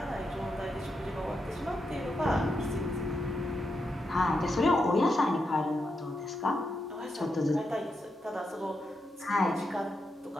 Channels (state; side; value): normal; both; correlation 0.85